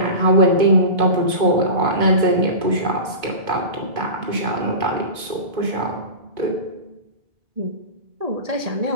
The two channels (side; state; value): left; late; 2.2 ms